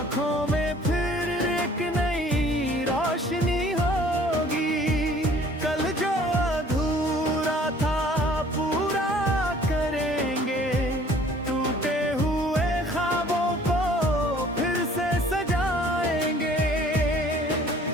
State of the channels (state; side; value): normal; both; correlation 0.54